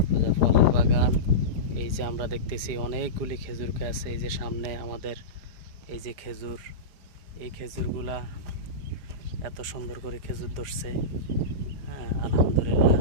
ফলের বাগান। এই যে আমরা দেখতেছি অনেকগুলি খেজুর গাছ, এই যে সামনে আমাদের এই যে খেজুর, এই খেজুরগুলা এত সুন্দর করে খেজুর ধরছে। হ্যাঁ, আলহামদুলিল্লাহ,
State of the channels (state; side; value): late; left; 4.9 ms